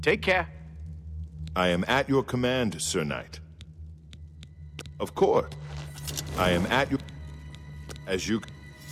Take care. I am at your command, Sir Knight. Of course. I am at your... As you...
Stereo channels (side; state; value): both; identical; correlation 1.00